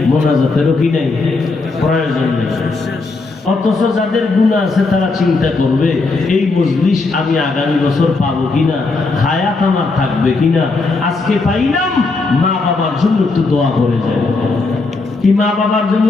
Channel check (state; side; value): quieter; right; 3.7 dB